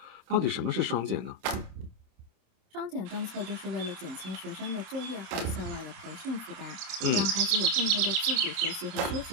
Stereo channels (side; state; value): left; late; 26 ms